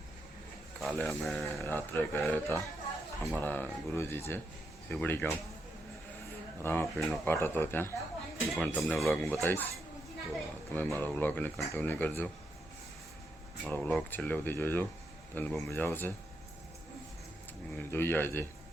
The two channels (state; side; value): normal; both; correlation 0.82